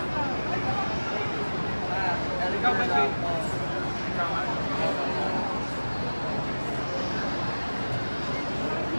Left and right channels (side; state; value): both; inverted; correlation -1.00